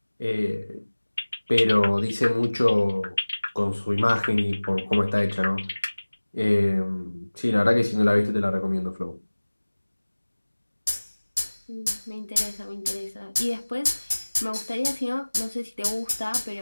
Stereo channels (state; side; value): inverted; both; correlation -1.00